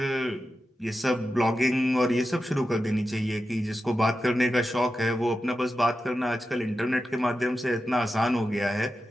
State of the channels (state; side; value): normal; both; correlation 0.91